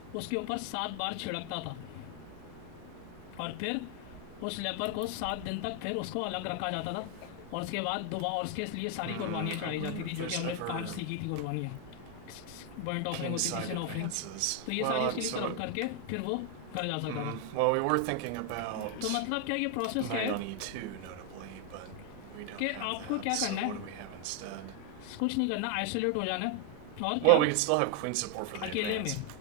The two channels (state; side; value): different; both; correlation 0.00